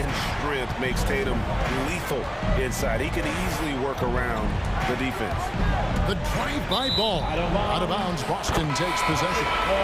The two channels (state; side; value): identical; both; correlation 1.00